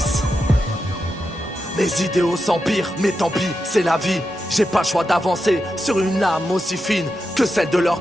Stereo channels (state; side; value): normal; both; correlation 0.88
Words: Mes idéaux s'empirent, mais tant pis, c'est la vie. J'ai pas le choix d'avancer sur une âme aussi fine que celle de leurs